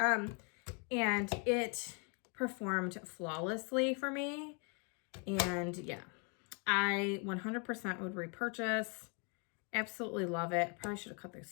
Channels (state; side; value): quieter; right; 35.8 dB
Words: it performed flawlessly for me. And yeah, I 100% would repurchase. Absolutely love it. Probably should have cut the